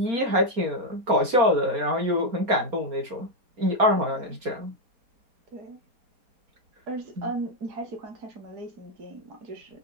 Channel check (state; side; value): late; left; 4.3 ms